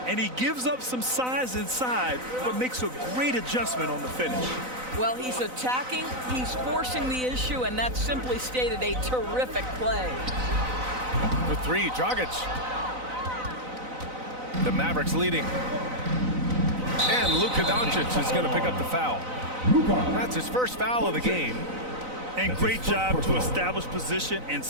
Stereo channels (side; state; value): left; late; 4.0 ms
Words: And he gives up some size inside, but makes a great adjustment on the finish. Well, he's attacking, he's forcing the issue, and that's simply stated a terrific play. For 3, Dragic. The Mavericks leading. And Luka Doncic is going to pick up the foul. That's his first foul of the game. And great job to establish position and